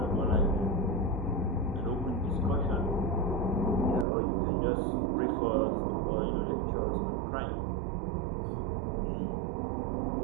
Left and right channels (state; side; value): drops out; left; at 4.0 s